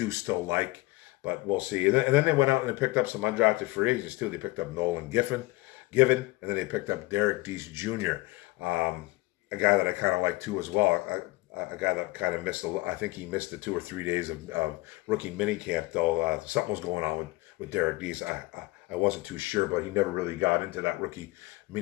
still like, but we'll see. And then they went out and they picked up some undrafted free agents too. They picked up Nolan Given, and then they picked up Derek Deese Jr., a guy that I kind of like too as well. A guy that kind of missed I think he missed the 2 or 3 days of rookie mini camp though. Something was going on with Derek Deese. I wasn't too sure, but he never really got into that rookie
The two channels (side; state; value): right; quieter; 21.3 dB